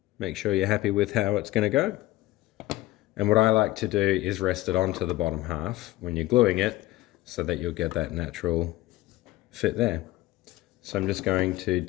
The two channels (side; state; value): right; quieter; 17.3 dB